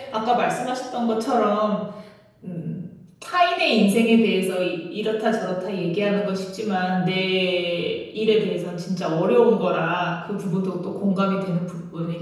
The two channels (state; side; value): identical; both; correlation 1.00